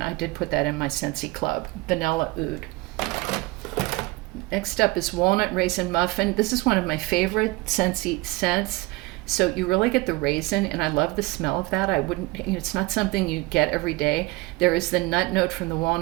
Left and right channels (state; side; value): quieter; left; 22.0 dB